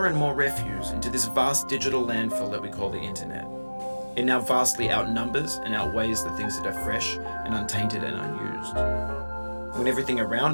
and more refuse into this vast digital landfill that we call the internet. It now vastly outnumbers and outweighs the things that are fresh and untainted and unused. When everything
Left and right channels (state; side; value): inverted; both; correlation -1.00